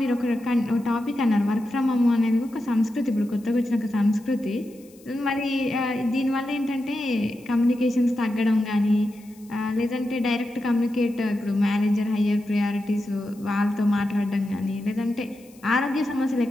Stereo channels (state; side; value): noise; left; hiss, 27 dB below the sound